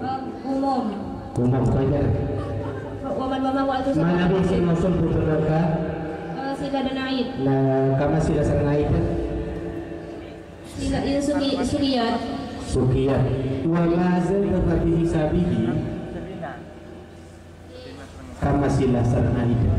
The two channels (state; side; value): identical; both; correlation 1.00